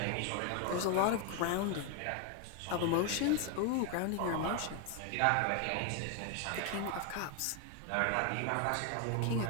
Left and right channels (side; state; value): both; different; correlation 0.01